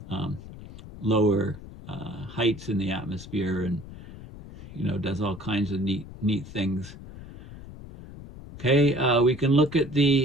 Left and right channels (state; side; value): noise; left; rumble, 15 dB below the sound